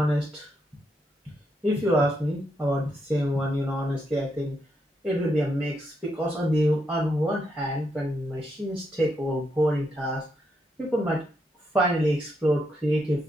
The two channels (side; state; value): both; normal; correlation 0.80